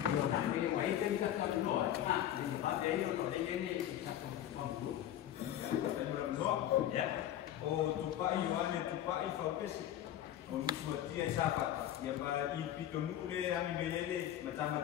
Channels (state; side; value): quieter; right; 11.6 dB